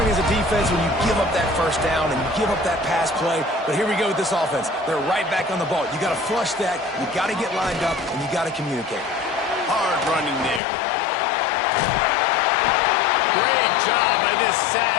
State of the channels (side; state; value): right; drops out; at 10.6 s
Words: as a defense when you give up that first down and you give up that pass play. But here we go with this offense. They're right back on the ball. You got to flush that. You got to get lined up, and you got to communicate. Hard running there. Great job by this